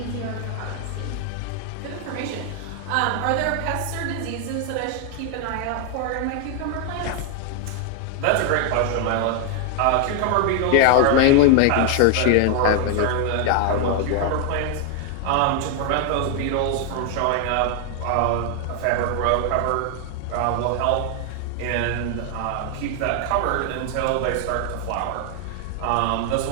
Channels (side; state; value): both; different; correlation 0.00